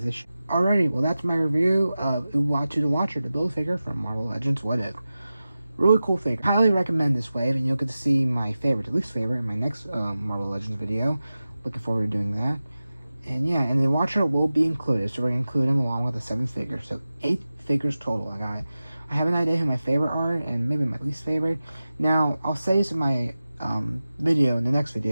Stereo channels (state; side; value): inverted; both; correlation -0.95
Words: Alrighty, well that's my review of Uatu the Watcher, the Build-A-Figure from Marvel Legends What If. Really cool figure. Highly recommend this wave, and you'll get to see my favorite to least favorite in my next Marvel Legends video. Looking forward to doing that. And yeah, and the Watcher will be included, so we're going to include him along with the 7 figures. So 8 figures total. I have an idea who my favorite are, and maybe my least favorite. Now, I'll say this in my video, in the next